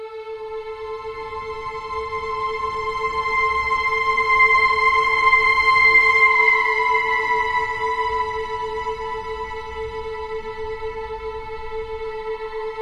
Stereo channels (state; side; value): identical; both; correlation 1.00